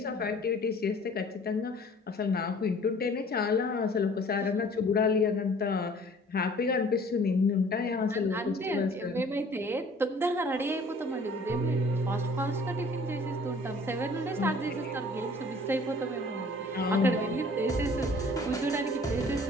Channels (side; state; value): both; normal; correlation 0.52